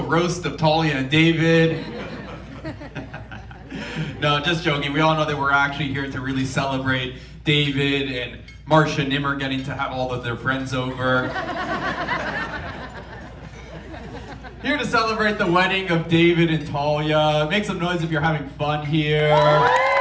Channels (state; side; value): identical; both; correlation 1.00